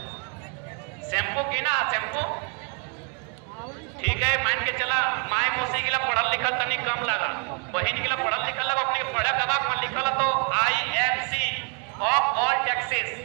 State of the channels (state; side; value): quieter; left; 37.5 dB